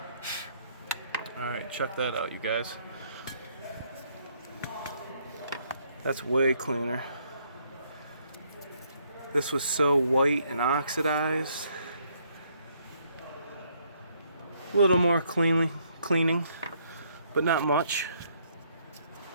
Alright, check that out, you guys. That's way cleaner. This was so white and oxidized. A little more cleaning, but not much.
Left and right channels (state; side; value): inverted; both; correlation -0.69